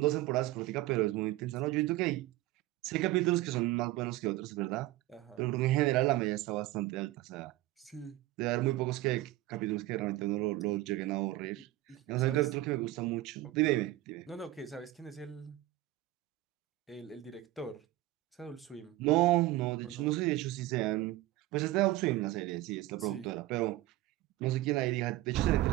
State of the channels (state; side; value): quieter; left; 16.8 dB